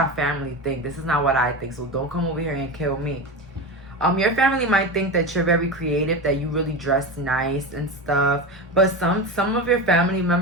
family think. This is not what I think, so don't come over here and kill me. Your family might think that you're very creative, that you really dress nice and stuff, but some of your family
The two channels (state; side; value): normal; both; correlation 0.22